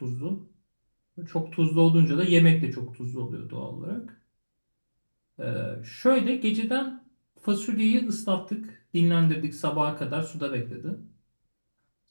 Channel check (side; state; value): both; inverted; correlation -1.00